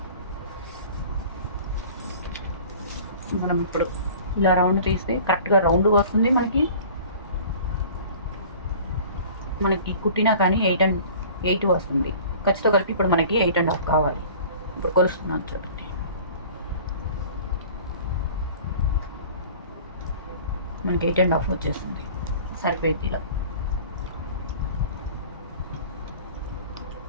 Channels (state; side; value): inverted; both; correlation -0.44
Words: మనం ఇప్పుడు ఇలా రౌండ్ తీస్తే కరెక్ట్గా రౌండ్ వస్తుంది. మనకి కుట్టినా కానీ 8 వస్తుంది. ఖర్చుతో కలిపి ఇప్పుడు మనకి 8.5 కావాలి. ఇప్పుడు కొలుస్తున్నాను చూడండి. మనకి 8.5 వచ్చేస్తుంది, సరిపోయింది. ఇలా